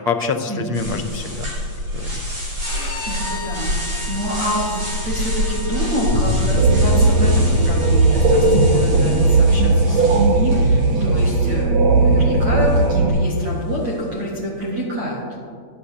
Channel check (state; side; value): late; left; 8.4 ms